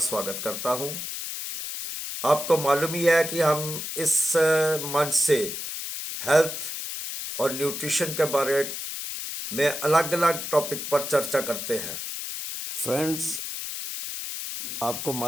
करता हूं। आपको मालूम ही है कि हम इस मंच से हेल्थ और न्यूट्रिशन के बारे में अलग अलग टॉपिक पर चर्चा करते हैं। फ्रेंड्स, आपको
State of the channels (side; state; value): left; noise; hiss, 6 dB below the sound